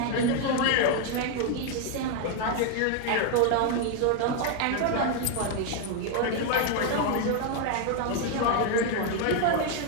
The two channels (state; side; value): different; both; correlation 0.01